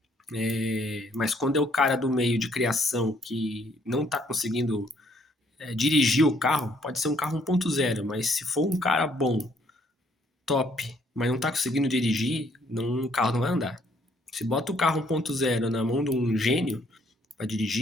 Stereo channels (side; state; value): both; normal; correlation 0.66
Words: Mas quando é o cara do meio de criação que não tá conseguindo dirigir o carro, pode ser um carro 1.0, mas se for um cara bom, top, mas não tá conseguindo dirigir, não, o carro não vai andar. Se bota o carro 1.0 na mão de um gênio para